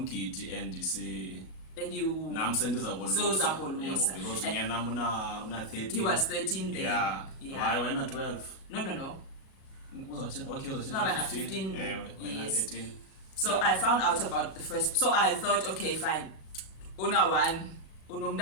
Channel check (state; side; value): late; right; 37 ms